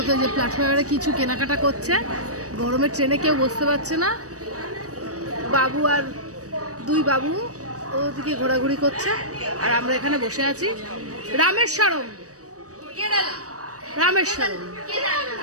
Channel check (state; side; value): late; left; 0.66 ms